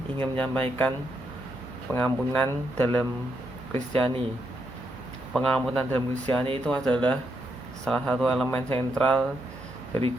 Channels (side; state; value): both; normal; correlation 0.79